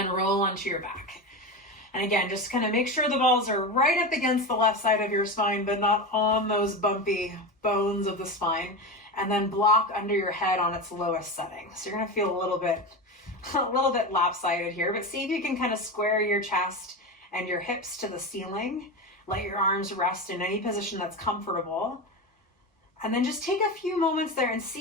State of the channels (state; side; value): normal; both; correlation 0.21